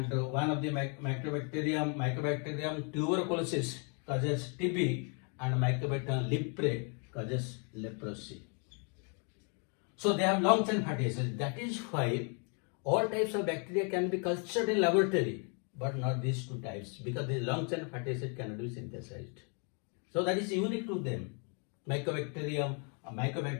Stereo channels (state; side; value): quieter; right; 38.1 dB